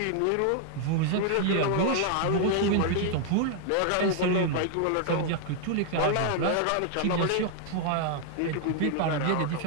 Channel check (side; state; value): both; different; correlation 0.00